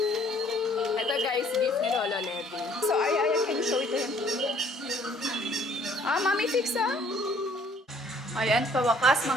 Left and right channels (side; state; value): both; normal; correlation 0.60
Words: Ito guys, gift ni Lola Levy. So Aryan, can you show it to him? Mami fix Ayan, pawakas